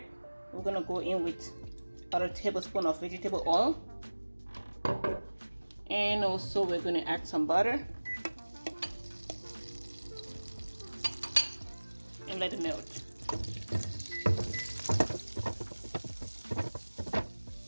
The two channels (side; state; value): both; inverted; correlation -1.00